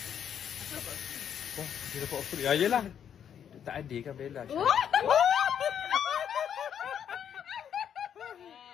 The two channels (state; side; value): quieter; right; 8.7 dB